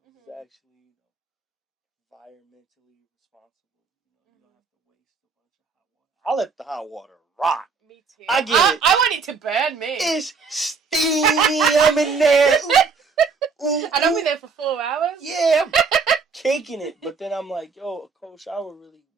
It's actually, environmentally responsible. You don't have to waste a bunch of hot water. I let the hot water rock. Me too. I get it. I want it to burn me. It's steamy. I'm in there. Ooh, and I'll be there for 4 hours. Yeah, I'm caking it. But then I'm like, yo, a cold shower really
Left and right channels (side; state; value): left; quieter; 5.1 dB